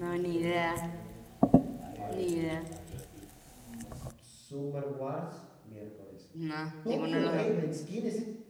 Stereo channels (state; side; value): identical; both; correlation 1.00